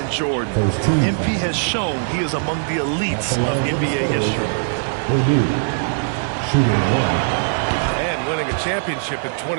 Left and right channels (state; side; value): silent; left; digital silence